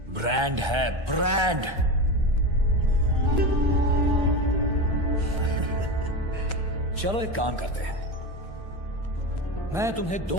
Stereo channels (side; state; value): left; late; 1.3 ms